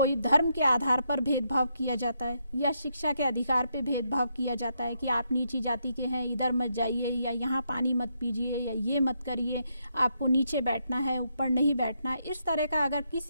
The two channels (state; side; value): inverted; both; correlation -0.78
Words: धर्म के आधार पर भेदभाव किया जाता है या शिक्षा के अधिकार पे भेदभाव किया जाता है कि आप नीची जाति के हैं, इधर मत जाइए, या यहाँ पानी मत पीजिए, या ये मत करिए, आपको नीचे बैठना है, ऊपर नहीं बैठना है, इस तरह का अगर